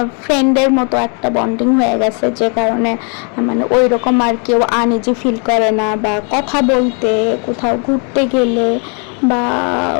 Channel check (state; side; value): quieter; right; 38.1 dB